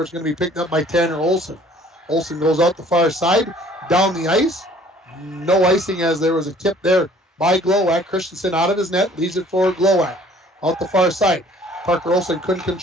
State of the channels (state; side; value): normal; both; correlation 0.54